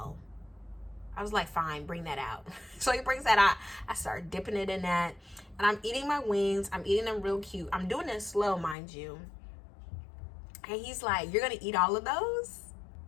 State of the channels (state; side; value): drops out; right; at 8.8 s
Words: I was like, fine, bring that out. So he brings that out. I start dipping it in that. And I'm eating my wings. I'm eating them real cute. I'm doing it slow, mind you. And he's like, you're going to eat all of those?